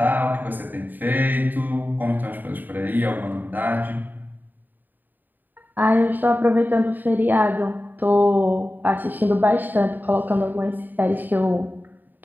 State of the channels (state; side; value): late; left; 0.089 ms